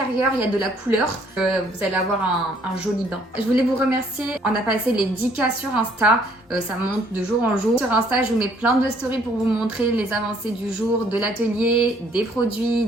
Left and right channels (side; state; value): both; normal; correlation 0.63